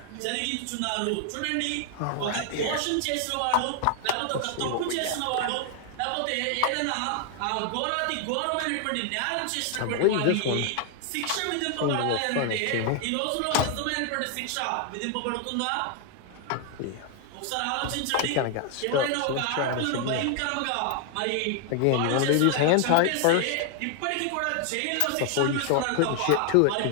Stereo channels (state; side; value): different; both; correlation 0.00